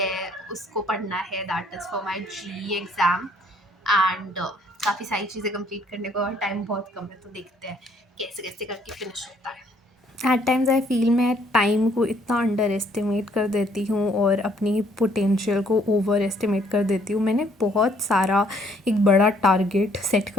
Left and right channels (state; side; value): normal; both; correlation 0.64